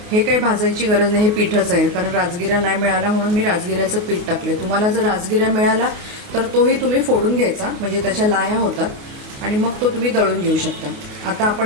हे काही भाजायची गरज नाही, हे पीठच आहे। कारण राजगिरा नाही मिळाला म्हणून मी राजगिऱ्याचं पीठ टाकले। तुम्हाला जर राजगिरा मिळाला तर तोही तुम्ही फोडून घ्यायचा, म्हणजे त्याच्या लाह्या होतात आणि मग तो तुम्ही दळून घेऊ शकता। आता आपण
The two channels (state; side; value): late; left; 28 ms